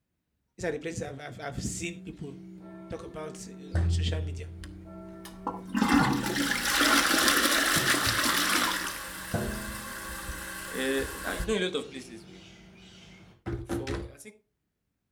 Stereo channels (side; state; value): both; identical; correlation 1.00